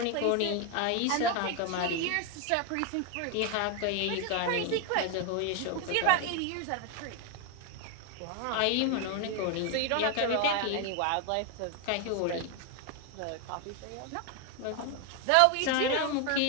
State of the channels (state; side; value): different; both; correlation 0.01